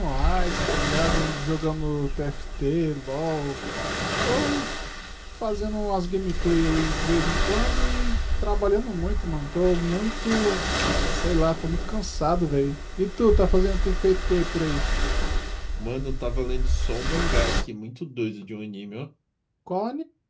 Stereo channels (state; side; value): identical; both; correlation 1.00